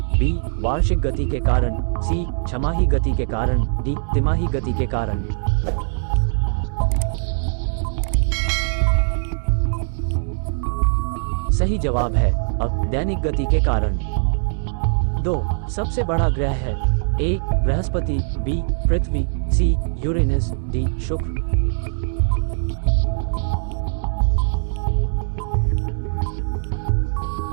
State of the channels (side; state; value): left; silent; digital silence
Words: बी, वार्षिक गति के कारण, सी, छमाही गति के कारण, डी, तिमाही गति के कारण। सही जवाब है अब दैनिक गति के कारण। 2, सबसे बड़ा ग्रह है। ए, बृहस्पति, बी, पृथ्वी, सी, यूरेनस, डी, शुक्र।